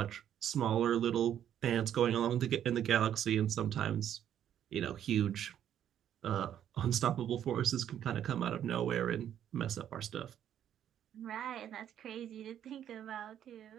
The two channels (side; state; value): left; quieter; 10.2 dB